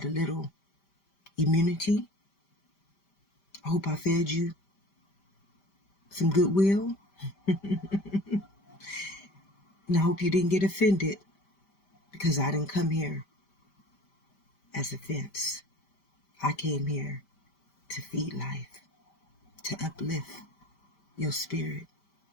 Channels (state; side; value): late; right; 5.1 ms